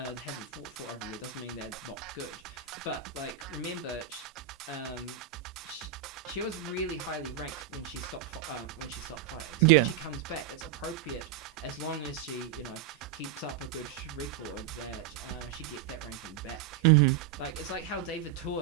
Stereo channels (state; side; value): quieter; left; 9.7 dB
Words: fought for over a year doesn't mean they're not good. But remember, she was really highly ranked when she stopped fighting. So when she comes back, it's appropriate as long as she keeps up a good record that she gets that ranking back. It's like how David